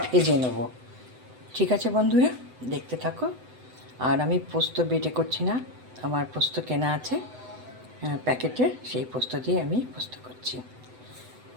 ভেজে নেব। ঠিক আছে বন্ধুরা, দেখতে থাকো। আর আমি পোস্ত বেটে করছি না, আমার পোস্ত কেনা আছে প্যাকেটের, সেই পোস্ত দিয়ে আমি পোস্ত করছি।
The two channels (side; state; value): left; late; 7.9 ms